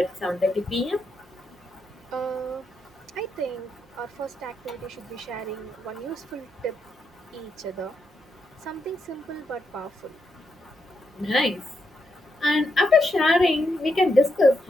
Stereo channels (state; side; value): normal; both; correlation 0.81